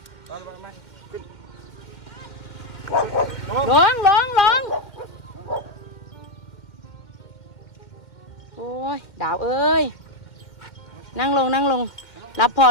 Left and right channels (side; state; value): right; late; 2.1 ms